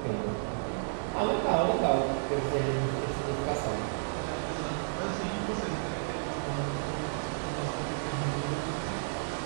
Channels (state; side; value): silent; left; 57 dB below the other